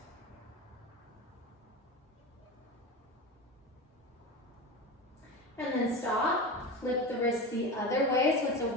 And then stop. Flip the wrist the other way. So it's a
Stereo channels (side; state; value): both; normal; correlation 0.26